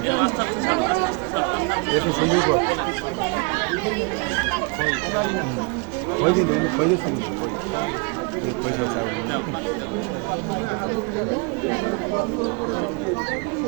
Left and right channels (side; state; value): left; quieter; 31.7 dB